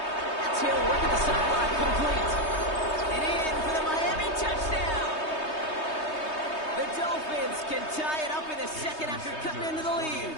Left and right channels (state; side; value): late; right; 3.2 ms